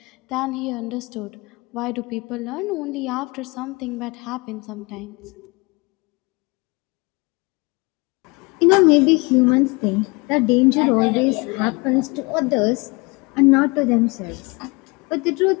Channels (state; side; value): quieter; right; 27.1 dB